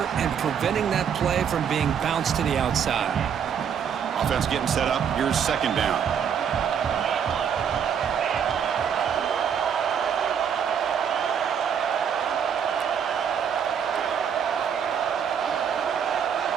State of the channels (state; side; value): quieter; left; 7.8 dB